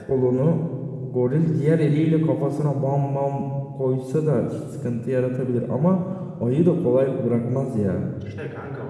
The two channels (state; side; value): identical; both; correlation 1.00